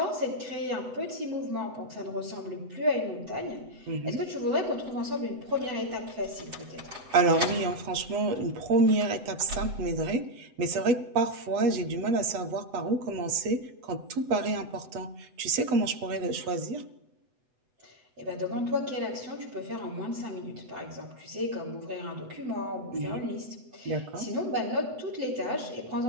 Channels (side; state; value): left; late; 8.0 ms